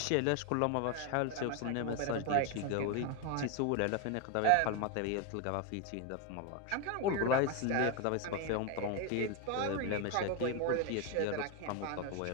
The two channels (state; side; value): different; both; correlation 0.01